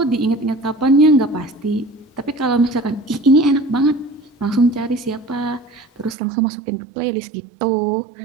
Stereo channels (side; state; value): left; drops out; at 6.2 s